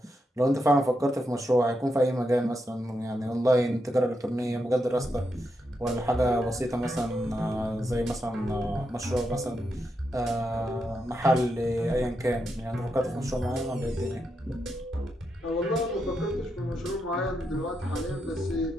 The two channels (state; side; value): normal; both; correlation 0.83